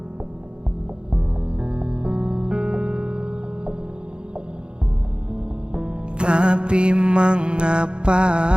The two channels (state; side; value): late; left; 0.053 ms